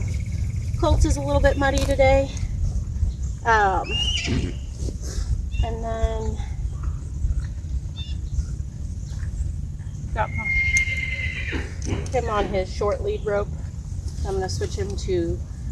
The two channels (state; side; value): identical; both; correlation 1.00